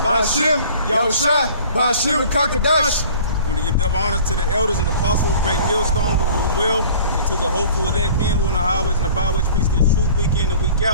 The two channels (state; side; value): inverted; both; correlation -0.47